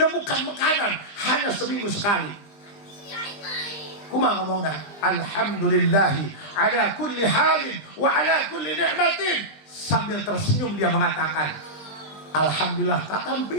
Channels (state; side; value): late; right; 20 ms